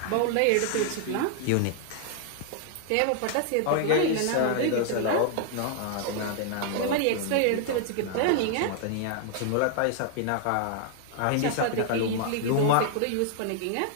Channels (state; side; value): different; both; correlation 0.00